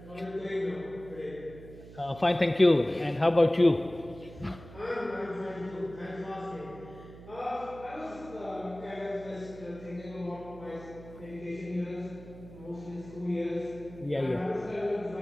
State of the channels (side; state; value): right; noise; hum, 17 dB below the sound